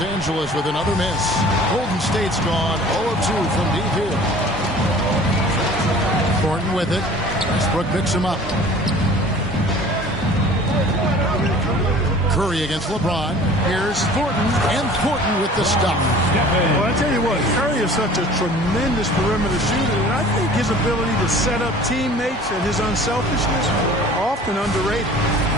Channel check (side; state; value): both; normal; correlation 0.46